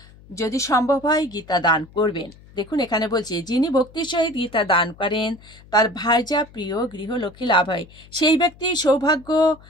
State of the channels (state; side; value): noise; left; hum, 23 dB below the sound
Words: যদি সম্ভব হয় গীতা দান করবেন। দেখুন এখানে বলছে যিনি ভক্তির সহিত গীতা দান করেন তার ভার্যা প্রিয় গৃহলক্ষ্মী লাভ হয়। সেই ব্যক্তি সৌভাগ্য,